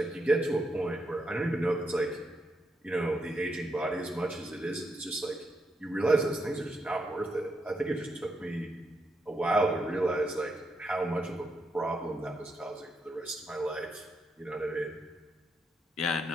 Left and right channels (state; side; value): normal; both; correlation 0.81